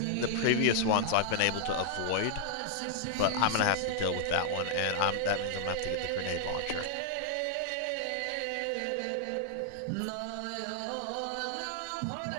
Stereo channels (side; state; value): both; different; correlation -0.01